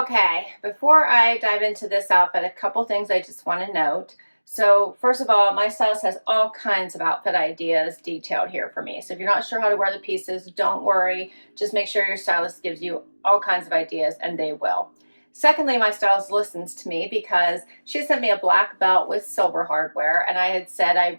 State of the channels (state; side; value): inverted; both; correlation -1.00